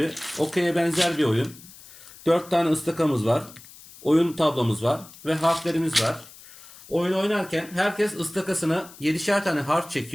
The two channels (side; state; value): left; noise; hiss, 20 dB below the sound